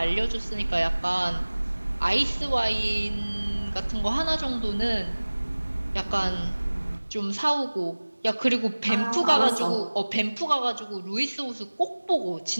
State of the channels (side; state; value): both; inverted; correlation -1.00